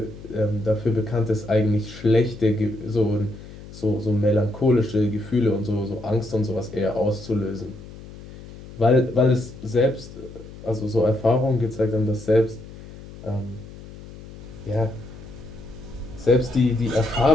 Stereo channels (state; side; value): noise; left; hum, 16 dB below the sound